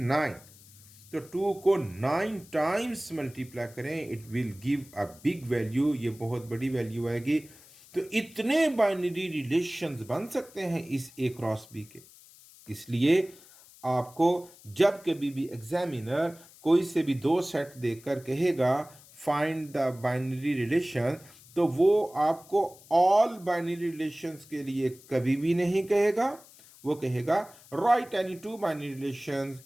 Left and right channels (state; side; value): noise; left; hiss, 23 dB below the sound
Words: 9। तो 2 को 9 टाइम्स मल्टीप्लाई करें, it will give a big value, ये बहुत बड़ी वैल्यू आएगी। तो इतने बाइनरी रिलेशंस बन सकते हैं इस ए क्रॉस बी के। इसलिए आपको जब कभी भी एग्जामिनर कोई से भी दो सेट देकर कहेगा फाइंड द बाइनरी रिलेशन, तो वो आपको ऑल बाइनरी रिलेशंस के लिए कभी भी नहीं कहेगा। वो कहेगा right any 2 binary relations,